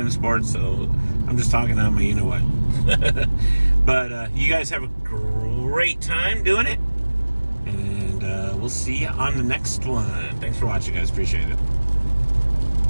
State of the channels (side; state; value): both; inverted; correlation -1.00